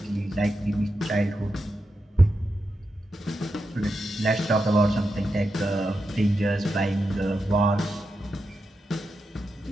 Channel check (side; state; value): both; normal; correlation 0.88